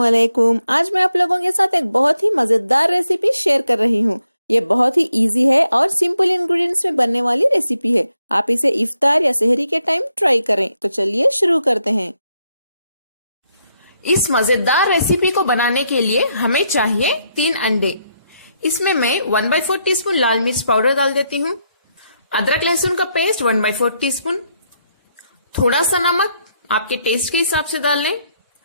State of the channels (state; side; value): inverted; both; correlation -0.78